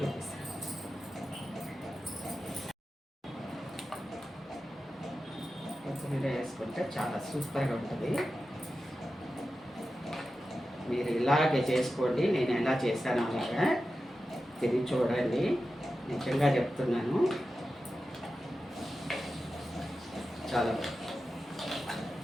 చూపిస్తాను. కొత్తిమీర వేసుకుంటే చాలా సూపర్గా ఉంటుంది. మీరు ఇలాగే చేసుకోండి, నేను ఎలా చేశానో అలాగా తిని చూడండి. నిజంగా చెప్తున్నాను, చాలా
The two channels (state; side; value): normal; both; correlation 0.92